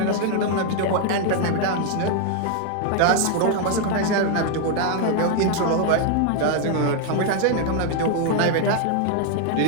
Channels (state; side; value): different; both; correlation 0.00